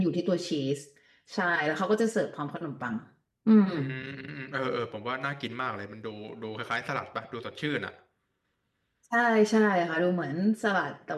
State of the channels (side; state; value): both; identical; correlation 1.00